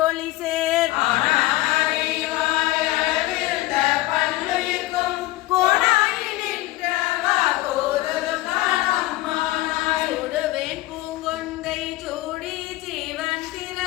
ஒளி சேர் கோடாயி நின்றவா கோதலும் காணம்மானாய் சுடுவேன் பூங்கொன்றை சூடி ஜீவன்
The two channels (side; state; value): right; quieter; 18.1 dB